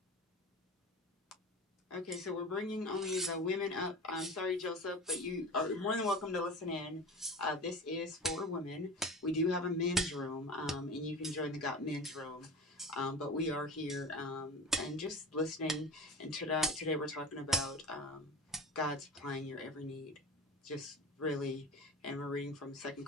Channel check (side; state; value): both; normal; correlation 0.33